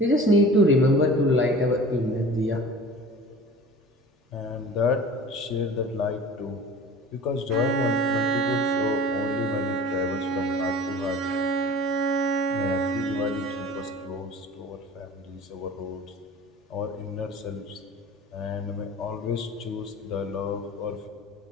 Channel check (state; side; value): normal; both; correlation 0.41